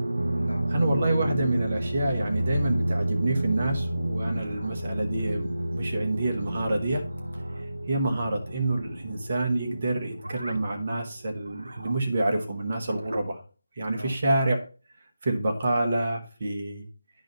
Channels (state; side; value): inverted; both; correlation -0.90